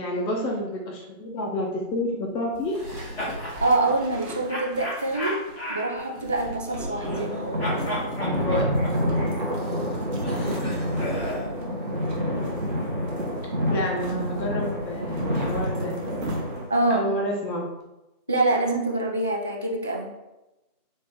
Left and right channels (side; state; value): both; inverted; correlation -0.40